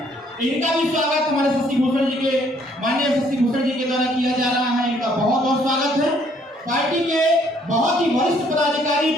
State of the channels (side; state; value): both; normal; correlation 0.65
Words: इनका भी स्वागत हमारे शशि भूषण जी के माननीय शशि भूषण जी के द्वारा किया जा रहा है। इनका बहुत बहुत स्वागत है। पार्टी के बहुत ही वरिष्ठ पदाधिकारी,